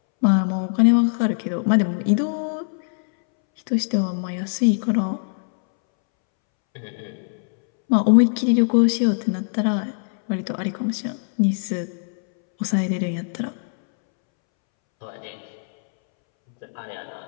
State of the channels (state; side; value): silent; right; 64 dB below the other